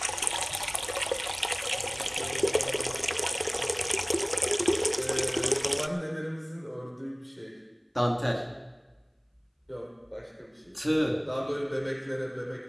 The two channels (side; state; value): both; identical; correlation 1.00